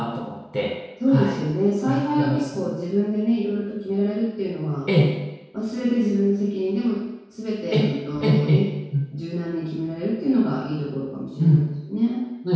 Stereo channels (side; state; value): both; identical; correlation 1.00